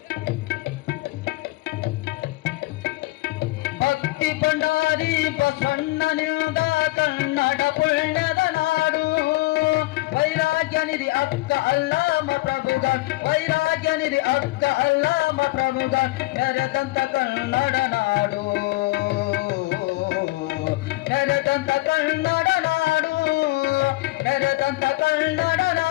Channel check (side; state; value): right; quieter; 20.7 dB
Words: ಭಕ್ತಿ ಭಂಡಾರಿ ಬಸವಣ್ಣನಿಂದ ಕನ್ನಡ ಪುಣ್ಯದ ನಾಡು ವೈರಾಗ್ಯ ನಿಧಿ ಅಕ್ಕ ಅಲ್ಲಾಮ ಪ್ರಭುಗನ್ ವೈರಾಗ್ಯ ನಿಧಿ ಅಕ್ಕ ಅಲ್ಲಾಮ ಪ್ರಭುಗನ್ ಮೆರೆದಂತ ಕನ್ನಡ ನಾಡು ಮೆರೆದಂತ ಕನ್ನಡ ನಾಡು ಮೆರೆದಂತ ಕನ್ನಡ